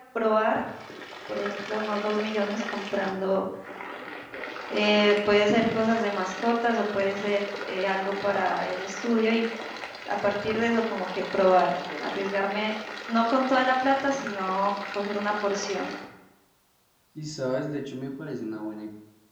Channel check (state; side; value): identical; both; correlation 1.00